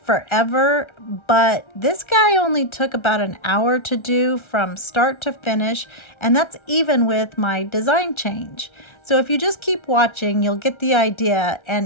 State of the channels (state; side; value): late; right; 1.3 ms